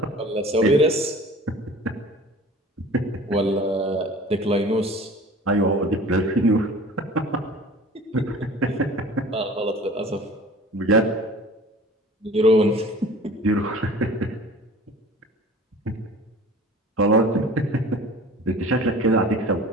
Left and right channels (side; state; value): both; normal; correlation 0.43